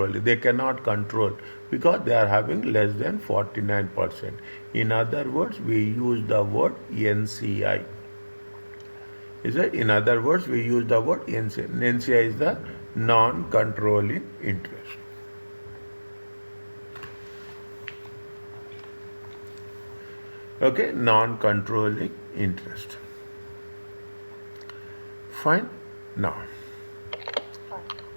they cannot control because they are having less than 49%. In other words, we use the word NCI. Is it? In other words, we use the word NCI. NCI is the non-controlling interest. Okay, non-controlling interest. Fine. Now,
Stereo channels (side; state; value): both; inverted; correlation -1.00